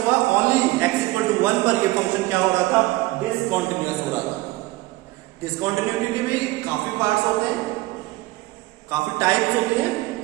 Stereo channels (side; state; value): left; quieter; 19.4 dB